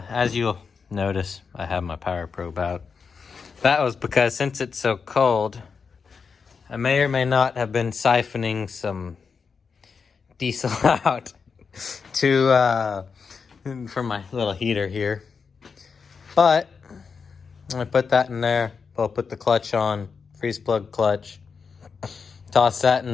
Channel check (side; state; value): right; quieter; 5.6 dB